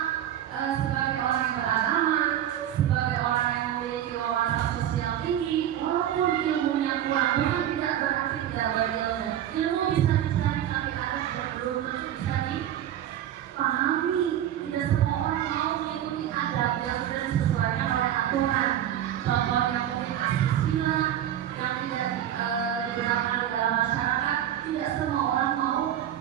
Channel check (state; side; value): quieter; left; 11.2 dB